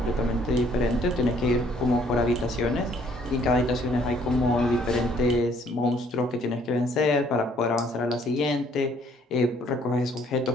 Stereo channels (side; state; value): both; normal; correlation 0.62